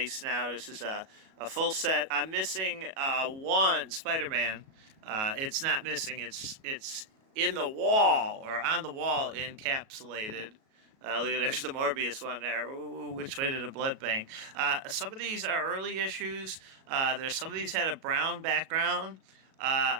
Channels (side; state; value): left; late; 37 ms